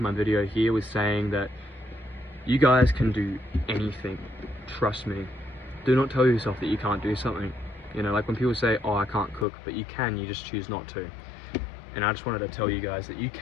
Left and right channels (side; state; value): right; drops out; at 9.5 s